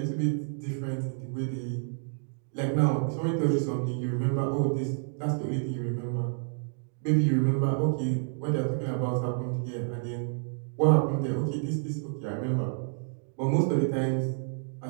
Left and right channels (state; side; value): silent; left; digital silence